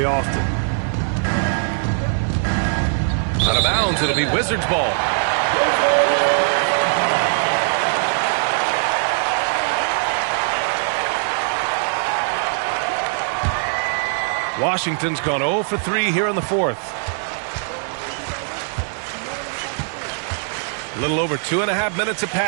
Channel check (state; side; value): silent; left; digital silence